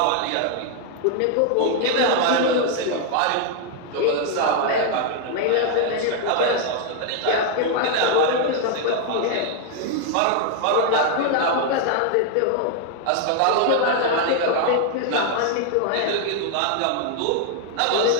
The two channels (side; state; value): both; different; correlation 0.00